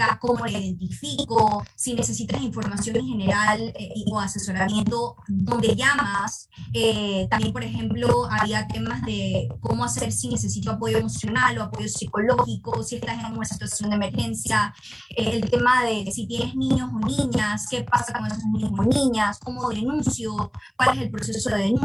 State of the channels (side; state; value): both; identical; correlation 1.00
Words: cómo la identifico, si necesitas información en general o asesoramiento, dónde llamas. También, por ejemplo, había temas de cómo hacer si necesito apoyo emocional o apoyo psicológico, si estás en una situación de emergencia, el tema de si tienes niños o niñas, qué pasa con esos niños o niñas, cómo denuncio, cuál es el proceso de